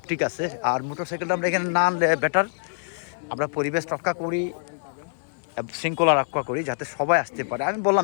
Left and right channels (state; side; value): silent; right; 62 dB below the other